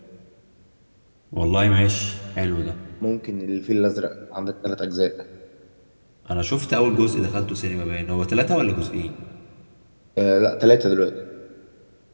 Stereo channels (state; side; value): inverted; both; correlation -1.00